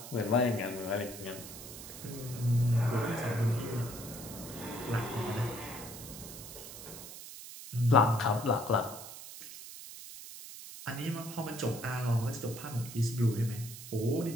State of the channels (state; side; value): noise; right; hiss, 12 dB below the sound